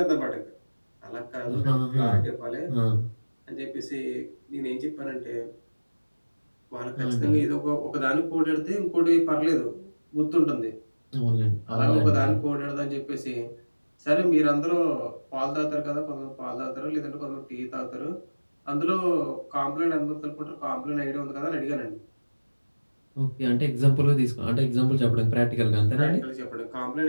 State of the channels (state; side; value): inverted; both; correlation -1.00